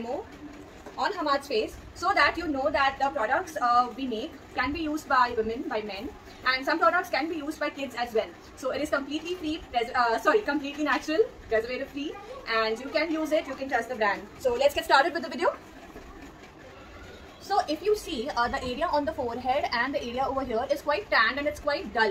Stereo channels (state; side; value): identical; both; correlation 1.00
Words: on Hamad's face so that you know that the products we make can be used by women, by men, and some products can be used by kids as well. So it is completely free, completely natural, preservative free, and you can use it, you can trust the brand. So let's get started with the video. So if you see the area on the forehead and the area over here is quite tanned and it's quite